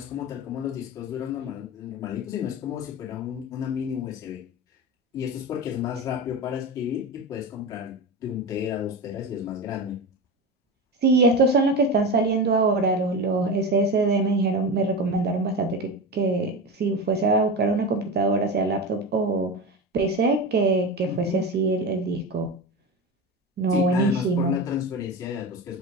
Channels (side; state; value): both; normal; correlation 0.23